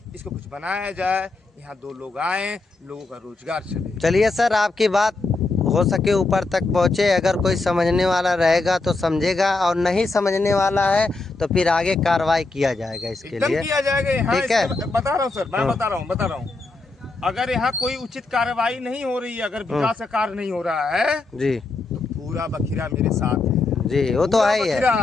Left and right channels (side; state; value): right; quieter; 3.4 dB